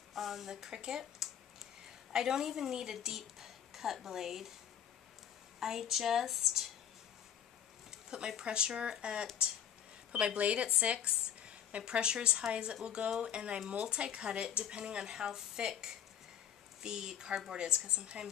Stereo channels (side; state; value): right; quieter; 9.5 dB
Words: on the Cricut, I don't even need a deep cut blade. I just put my blade at 6, my pressure as high as it will go, and I multi-cut it depending on how thick the cardboard is, because